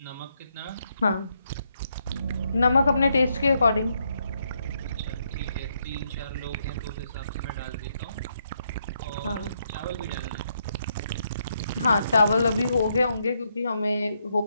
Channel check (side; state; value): both; inverted; correlation -0.78